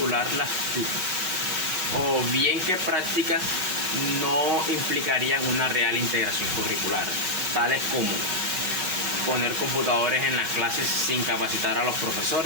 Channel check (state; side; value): late; left; 5.3 ms